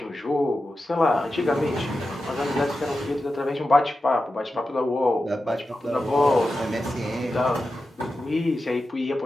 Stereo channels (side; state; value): both; normal; correlation 0.92